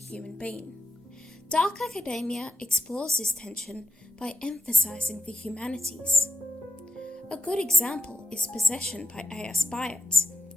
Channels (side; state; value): both; normal; correlation 0.89